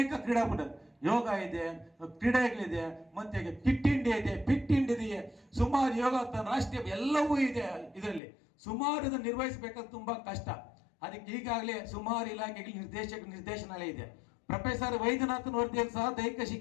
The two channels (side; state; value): right; drops out; at 8.2 s